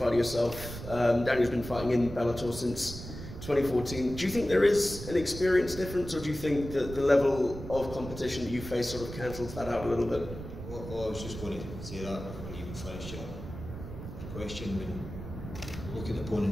yourself. Daniel's been fighting in Bellator since 2014. Do you think there is an experience difference, or do you think that the level of competition that you face sort of cancels that out a little bit? Well, I was just going to say that before you even finish your question. When you look at the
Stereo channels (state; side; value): noise; right; rumble, 10 dB below the sound